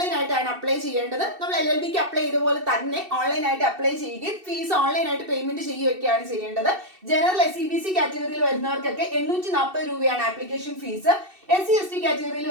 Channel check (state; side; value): late; left; 2.7 ms